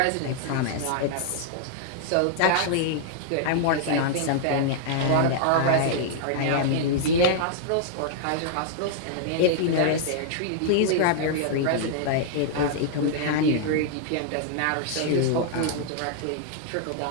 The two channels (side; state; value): both; different; correlation -0.01